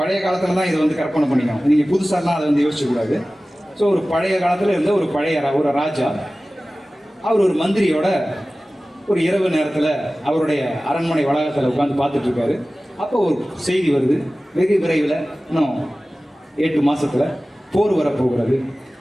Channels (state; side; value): normal; both; correlation 0.97